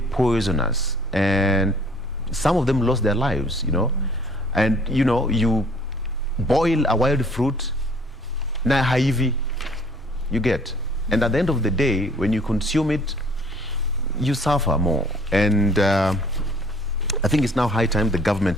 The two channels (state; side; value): normal; both; correlation 0.57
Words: poisonous, and some of them lost their lives, you know. And you know, you boil a wild fruit, na haivi, you get, and at the end of the day, when you consume it, you suffer more. And I think it's now high time the